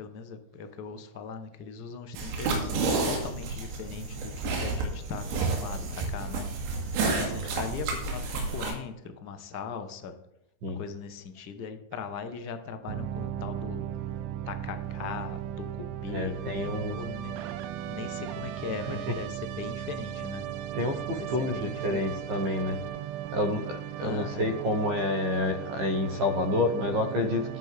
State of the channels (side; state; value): left; late; 15 ms